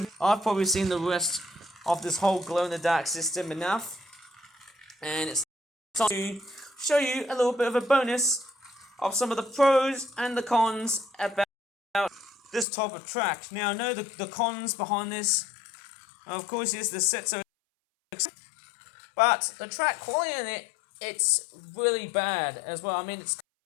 I've probably seen the rest of this whole glow-in-the-dark system enough. And it's time to show you a little bit of a bonus of some of the pros and the cons about this type of track. Now I know the cons behind this, of course, is the sets are, but the track quality in it's really bad as well. I mean, it's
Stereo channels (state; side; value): drops out; right; at 12.7 s